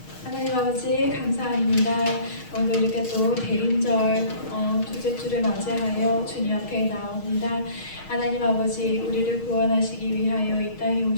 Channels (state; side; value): late; right; 6.4 ms